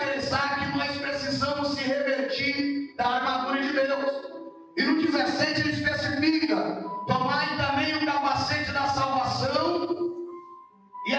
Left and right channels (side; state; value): both; identical; correlation 1.00